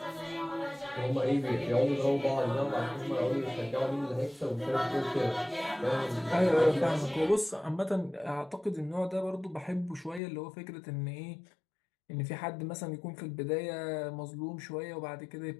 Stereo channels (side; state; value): right; drops out; at 10.2 s